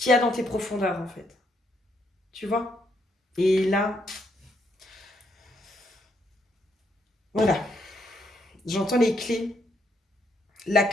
y a dans tes profondeurs, en fait. Tu vois? Et là, voilà. J'entends les clés. La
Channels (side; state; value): both; normal; correlation 0.74